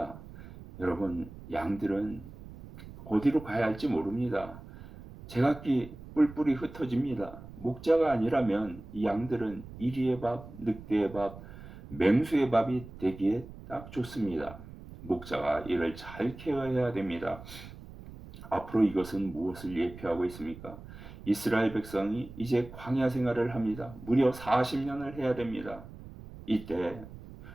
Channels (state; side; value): noise; right; rumble, 15 dB below the sound